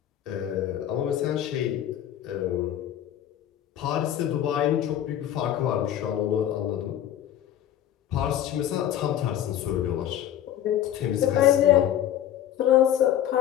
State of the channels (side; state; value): right; quieter; 11.2 dB